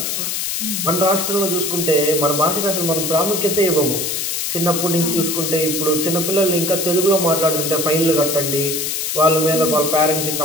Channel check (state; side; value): noise; left; hiss, 2 dB below the sound